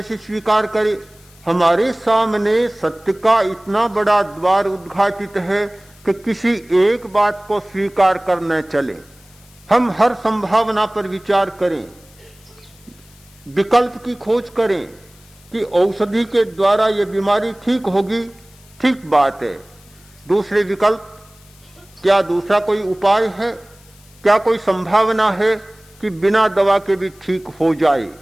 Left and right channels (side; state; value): left; noise; hiss, 27 dB below the sound